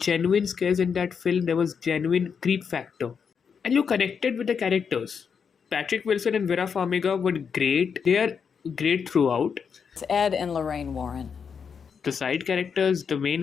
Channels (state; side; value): quieter; right; 6.5 dB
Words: scares in that film, there was genuine creep factor. And you connected with the characters. Patrick Wilson and Vera Farmiga were great. They are great throughout. It's Ed and Lorraine Warren. The side characters, the main